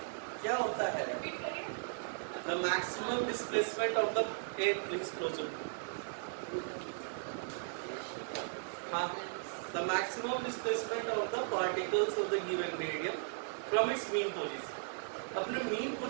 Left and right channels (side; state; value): left; silent; 53 dB below the other